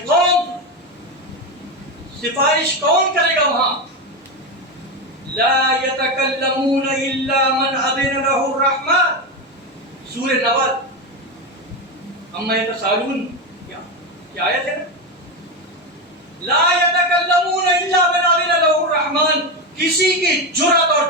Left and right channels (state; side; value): normal; both; correlation 0.14